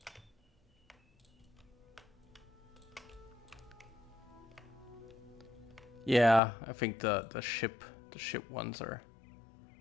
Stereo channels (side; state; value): right; drops out; at 6.4 s